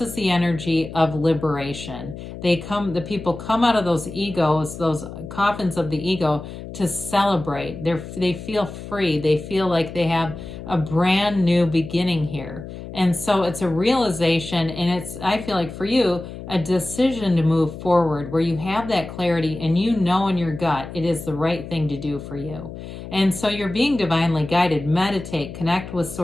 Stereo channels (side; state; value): left; noise; hum, 11 dB below the sound